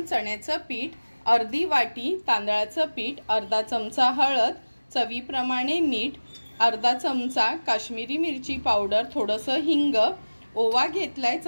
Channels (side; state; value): both; inverted; correlation -1.00